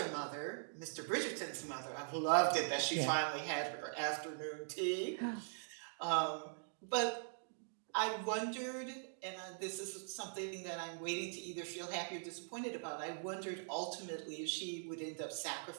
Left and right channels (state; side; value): silent; left; digital silence